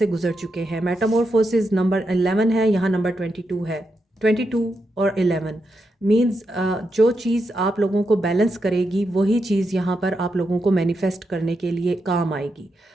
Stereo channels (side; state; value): both; normal; correlation 0.85